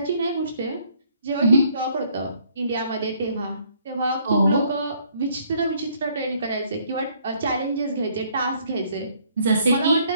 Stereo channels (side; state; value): both; inverted; correlation -0.65